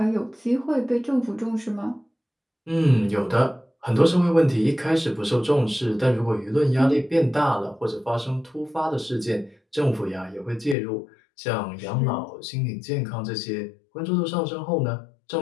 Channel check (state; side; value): drops out; right; at 10.8 s